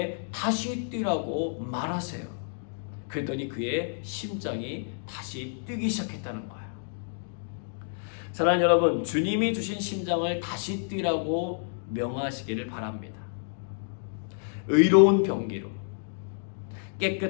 다시 뛰라고 말하세요. 그랬더니 그의 심장이 다시 뛰기 시작했다는 거예요. 사랑하는 여러분, 주님이 주신 심장을 다시 뛰라고 명하시기를 바랍니다. 의로운 병기로,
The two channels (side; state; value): right; silent; digital silence